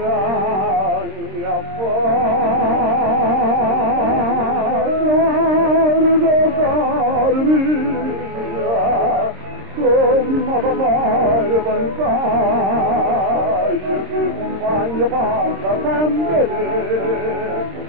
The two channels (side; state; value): left; late; 26 ms